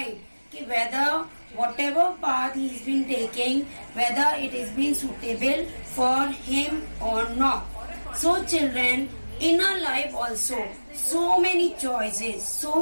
whether whatever path he's been taking, whether it is being suitable for him or not. So children, in our life also, so many choices,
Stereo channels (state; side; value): inverted; both; correlation -1.00